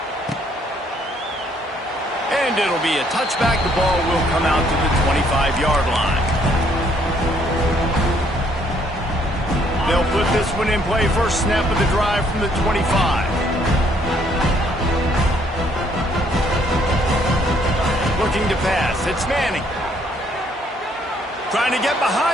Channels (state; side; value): normal; both; correlation 0.67